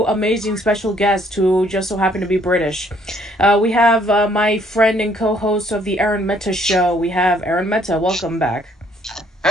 amazing special guests who just so happen to be British. We have my friend and co-host of the Aaron Meta Show. We have Aaron Meta. Welcome back.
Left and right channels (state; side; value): normal; both; correlation 0.64